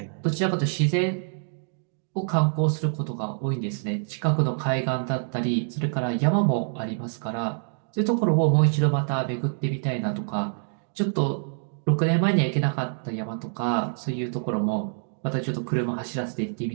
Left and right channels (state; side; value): silent; left; 61 dB below the other